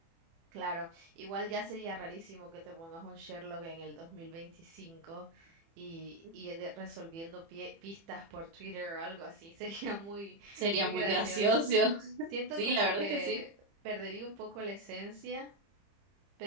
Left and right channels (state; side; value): late; left; 30 ms